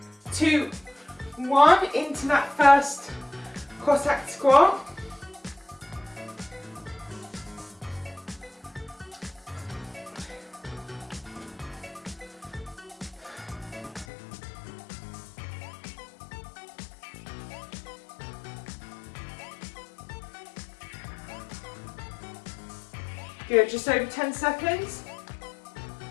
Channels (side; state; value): right; drops out; at 14.1 s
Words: 2, 1, into that first Cossack squat. Good, just over 10 seconds.